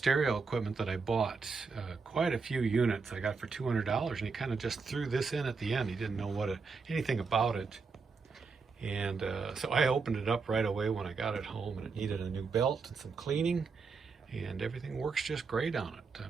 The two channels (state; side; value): quieter; left; 4.8 dB